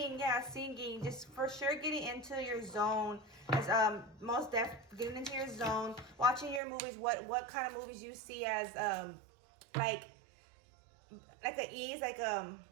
just for sure getting into your zone. As most getting into your zone, watching your movies, what kind of movies you see as like like an ease, like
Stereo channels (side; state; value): left; drops out; at 6.6 s